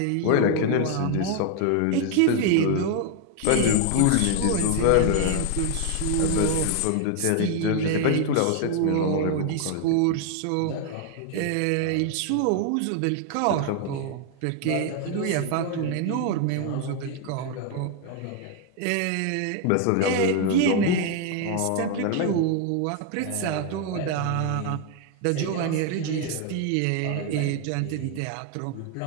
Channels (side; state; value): both; different; correlation 0.01